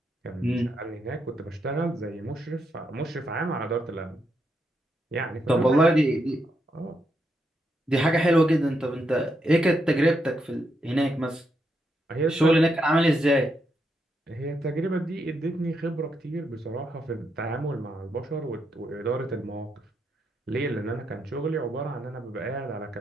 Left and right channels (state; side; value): normal; both; correlation 0.80